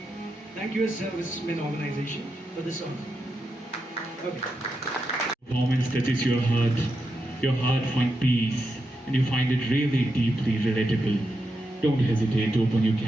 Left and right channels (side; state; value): both; normal; correlation 0.86